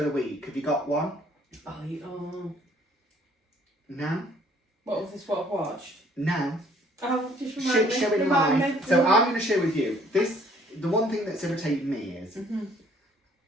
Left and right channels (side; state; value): both; normal; correlation 0.60